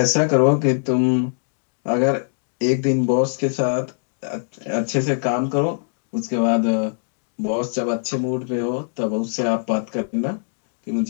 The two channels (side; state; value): right; silent; digital silence